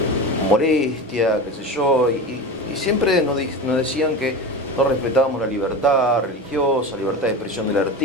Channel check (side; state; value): both; normal; correlation 0.27